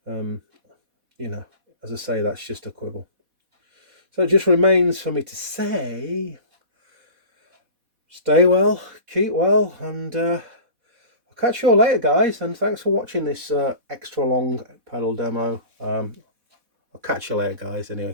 as I say, that's just a quibble. So it just remains for me to say, stay well, keep well, and I'll catch you all later, guys, and thanks for watching this extra long pedal demo. I'll catch you later, guys.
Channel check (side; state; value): left; late; 4.1 ms